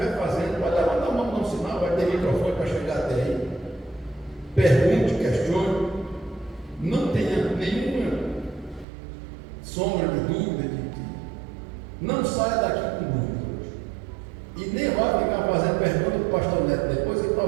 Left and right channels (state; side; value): drops out; left; at 8.8 s